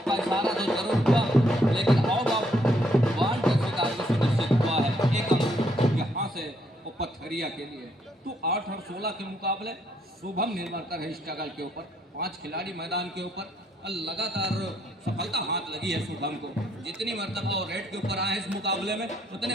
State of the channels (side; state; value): both; normal; correlation 0.71